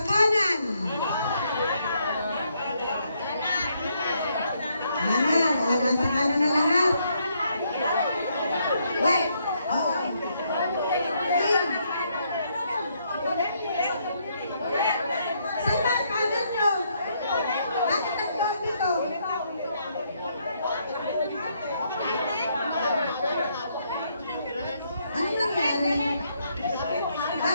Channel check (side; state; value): both; inverted; correlation -0.74